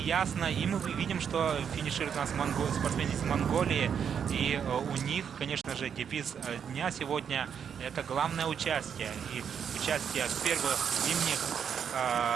и мы видим, что финишируют у нас спортсмены из Монголии, и у них, конечно же, девиз дня сегодня — это главное участие, и участие в первых зимних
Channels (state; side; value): quieter; left; 7.7 dB